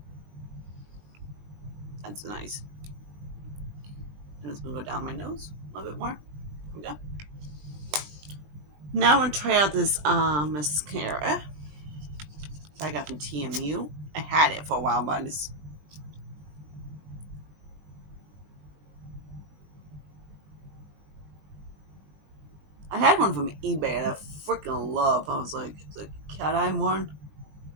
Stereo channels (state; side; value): late; left; 20 ms